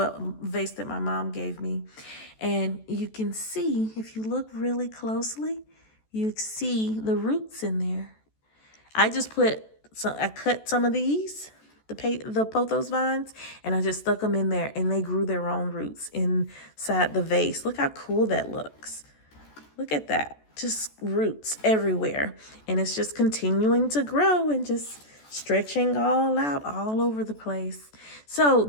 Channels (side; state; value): right; late; 14 ms